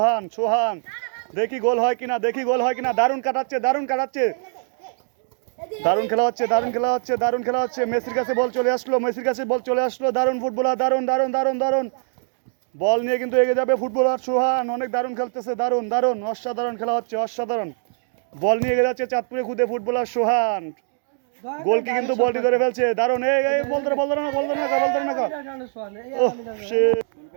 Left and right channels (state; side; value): silent; left; 64 dB below the other